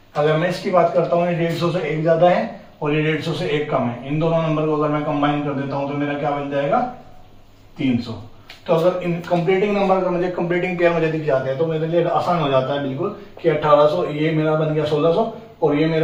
अगर मैं इसकी बात करता हूँ, ये 150 से 1 ज्यादा है और ये 150 से 1 कम है। इन दोनों नंबर को अगर मैं कंबाइन कर देता हूँ तो मेरा क्या बन जाएगा, 300। तो अगर इन कंप्लीटिंग नंबर का मुझे कंप्लीटिंग पेयर मुझे दिख जाते हैं तो मेरे लिए आसान हो जाता है बिल्कुल कि 1800, ये मेरा बन गया 1600 और ये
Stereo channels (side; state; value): both; identical; correlation 1.00